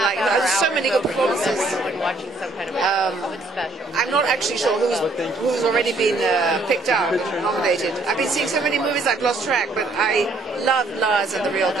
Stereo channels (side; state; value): left; quieter; 3.0 dB